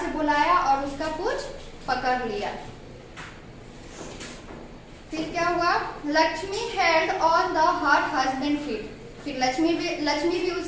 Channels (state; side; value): identical; both; correlation 1.00